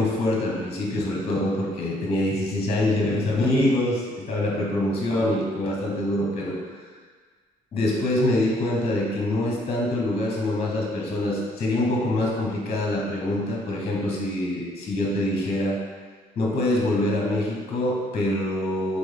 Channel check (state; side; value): normal; both; correlation 0.66